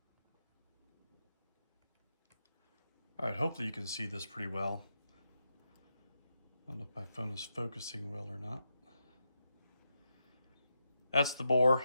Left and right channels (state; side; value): inverted; both; correlation -0.86